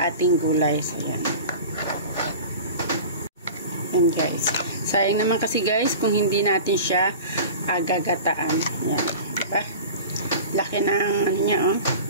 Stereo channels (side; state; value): both; inverted; correlation -0.37